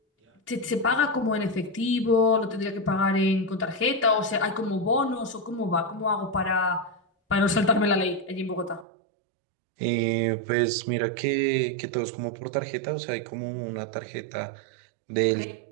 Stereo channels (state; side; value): drops out; left; at 8.8 s